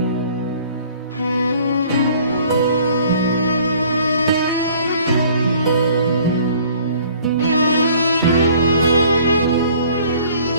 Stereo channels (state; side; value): inverted; both; correlation -0.55